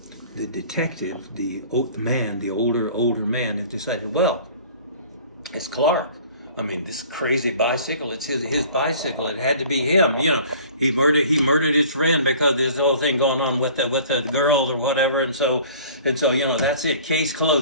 the detective, the older man, has decided, well, it's Clark. I mean, this crazy bicycle, it's his bicycle. It had to be him. He murdered his friend because there's the whole thing going on with the girl or whatever, and so that's it. Case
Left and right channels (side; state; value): both; inverted; correlation -0.48